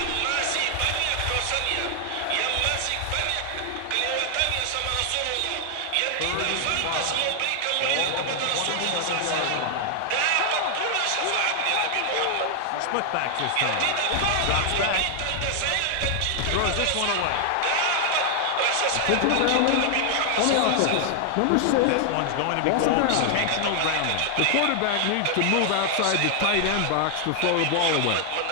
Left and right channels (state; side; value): different; both; correlation 0.00